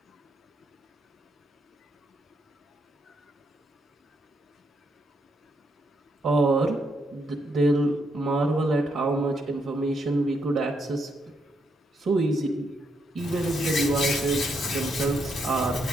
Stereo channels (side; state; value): both; normal; correlation 0.77